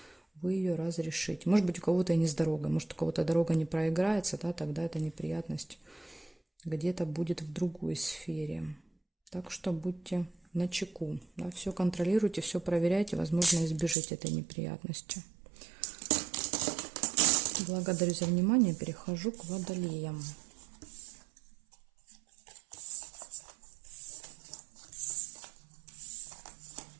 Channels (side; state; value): left; drops out; at 14.0 s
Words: вы ее разрешите. Может быть, у кого-то и не с дорогой, может, у кого-то дорога не проиграется, да, тогда эта неприятность где-то будет в другой сфере. Так что будьте начеку, да, все контролируйте, все проверяйте, возможно, избежите этой неприятности. Благодарю за внимание, перехожу к водолеям.